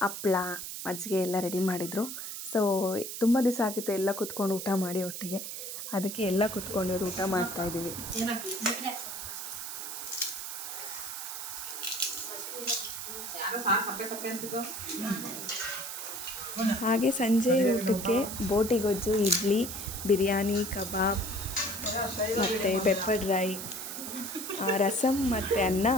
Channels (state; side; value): noise; right; hiss, 7 dB below the sound